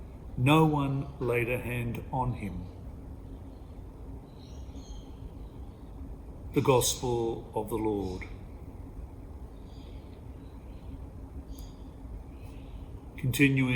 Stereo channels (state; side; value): identical; both; correlation 1.00